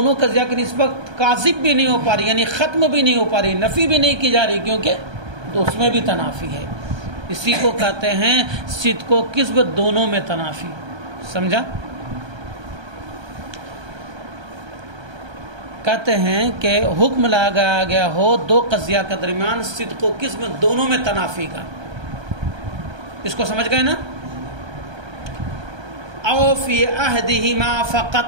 قضیہ کی نسبت کاذب بھی نہیں ہو پا رہی, یعنی ختم بھی نہیں ہو پا رہی, نفی بھی نہیں کی جا رہی کیونکہ اس میں بھی تنافی ہے. اسی کو کہتے ہیں صدق و کذب دونوں میں تنافی. سمجھا؟ کہتے ہیں کہ حکم لگایا گیا ہو دو قضیہ کے درمیان صدق و کذب دونوں میں تنافی کا. اس کو سمجھ گئے نا؟ او فی عہدہما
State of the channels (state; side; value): late; left; 1.3 ms